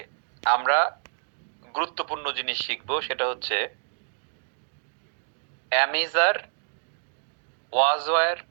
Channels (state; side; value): silent; left; digital silence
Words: আমরা গুরুত্বপূর্ণ জিনিস শিখবো, সেটা হচ্ছে am is are, was were,